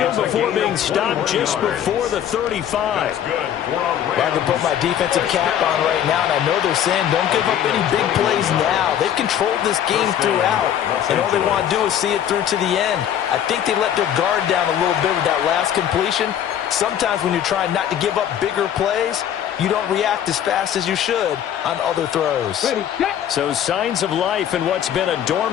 before being stopped just before the 35. I can put my defensive cap on right now, and I know they're saying don't give up any big plays now. They've controlled this game throughout, and all they want to do is see it through to the end. I think they let their guard down a little bit with that last completion. Sometimes when you're trying not to give up bigger plays, you don't react as fast as you should on other throws. So signs of life in what's been a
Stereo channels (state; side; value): quieter; right; 10.1 dB